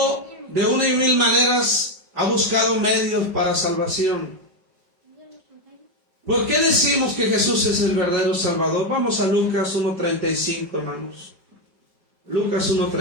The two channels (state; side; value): late; left; 5.1 ms